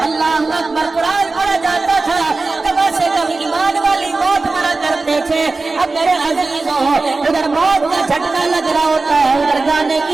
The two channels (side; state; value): left; quieter; 3.6 dB